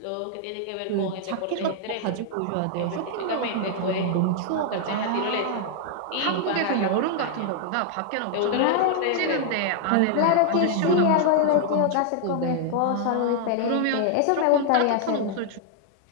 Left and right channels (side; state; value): both; different; correlation 0.00